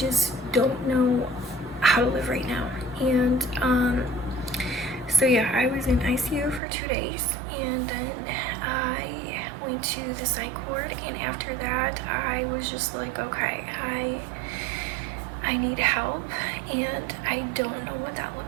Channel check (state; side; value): drops out; left; at 6.6 s